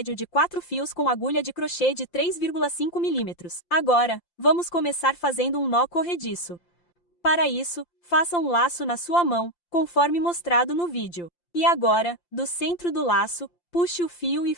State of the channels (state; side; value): late; right; 5.8 ms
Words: de 4 fios com agulha de crochê de 3,5 mm. Agora, vamos começar fazendo um nó corrediço. Para isso, faça um laço na sua mão, conforme mostrado no vídeo. E agora, do centro do laço, puxe o fio e